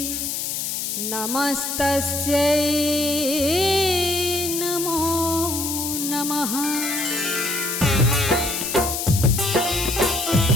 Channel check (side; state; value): left; noise; hiss, 3 dB below the sound